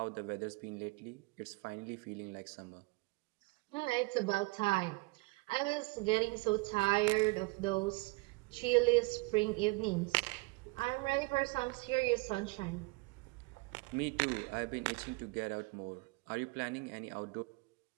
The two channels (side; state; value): left; quieter; 25.8 dB